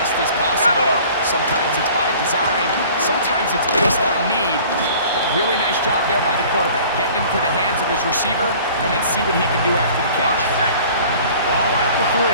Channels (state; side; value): inverted; both; correlation -0.48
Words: as possible. Sometimes it's by design, sometimes it's based on need. But really nice job there by the quarterback, getting into the hands of his receiver and then see what he can do after the catch. Ball at the 3,